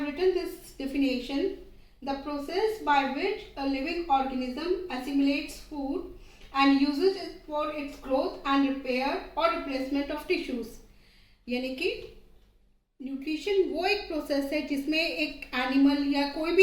written this definition: the process by which a living organism assimilates food and uses it for its growth and repair or replacement of tissues. यानी कि nutrition वो एक process है जिसमें एक animal या कोई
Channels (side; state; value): both; identical; correlation 1.00